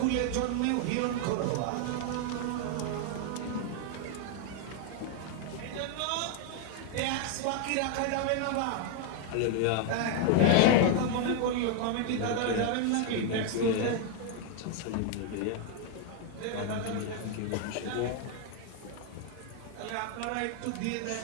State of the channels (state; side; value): different; both; correlation 0.00